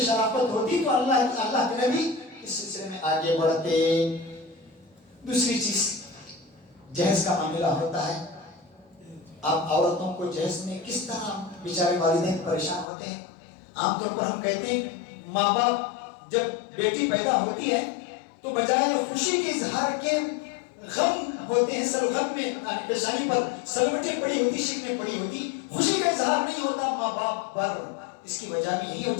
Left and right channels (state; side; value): drops out; right; at 12.9 s